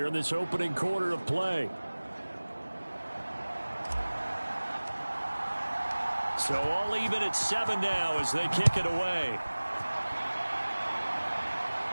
in this opening quarter of play. So all even at 7 now as they kick it away.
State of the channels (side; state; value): both; inverted; correlation -1.00